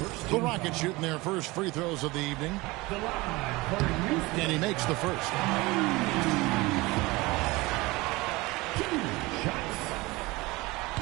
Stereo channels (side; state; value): left; quieter; 22.2 dB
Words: The Rockets shooting their first free throws of the evening. And he makes the first.